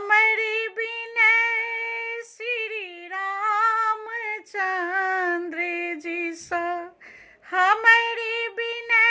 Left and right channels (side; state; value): both; identical; correlation 1.00